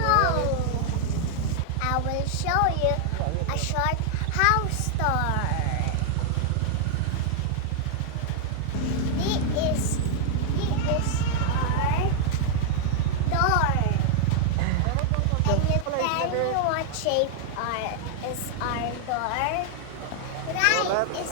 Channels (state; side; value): different; both; correlation -0.01